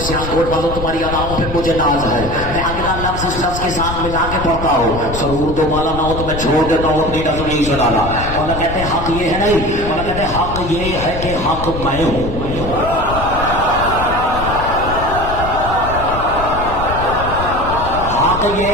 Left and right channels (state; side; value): noise; left; rumble, 7 dB below the sound